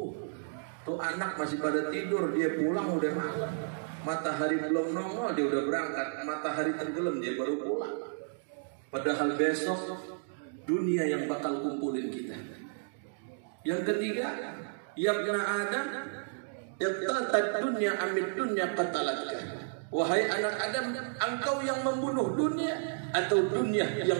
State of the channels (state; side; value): silent; left; digital silence